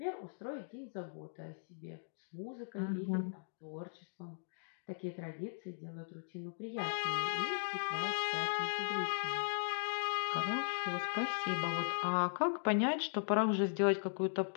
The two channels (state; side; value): silent; right; digital silence